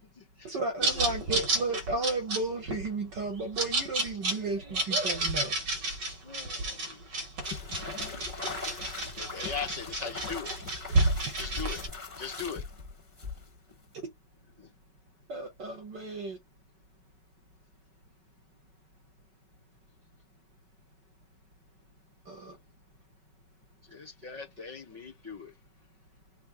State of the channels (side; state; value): left; late; 5.3 ms